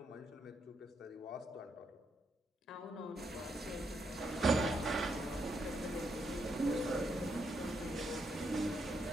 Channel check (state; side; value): normal; both; correlation 0.79